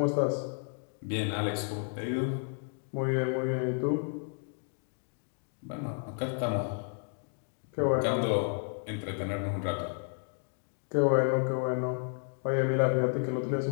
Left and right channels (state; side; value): silent; right; 56 dB below the other